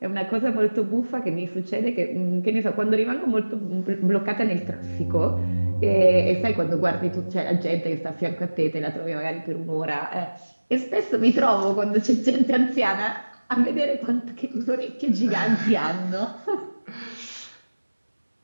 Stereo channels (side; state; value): both; inverted; correlation -1.00